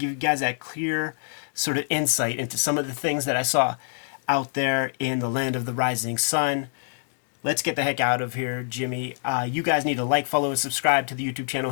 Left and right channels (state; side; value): silent; right; 56 dB below the other